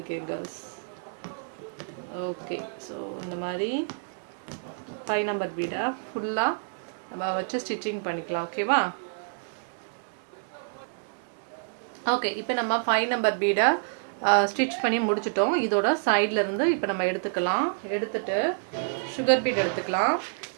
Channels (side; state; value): left; silent; digital silence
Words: கேர்ள்ஸ். ஓகே, ஸோ இந்த மாதிரி 5 நம்பர் பீடை ஃபுல்லாக நம்ம வச்சு ஸ்டிச்சிங் பண்ணிக்கலாம். ஓகேவா? ஓகே, இப்போ நம்ம 5 நம்பர் பீடை ஸ்டிச் பண்ணி முடிச்சிட்டோம். இதோட சைடில் இருந்து இப்போ நம்ம எடுத்துக்கலாம். எடுத்துட்டு சுகர் பீட் எடுத்துக்கலாம்.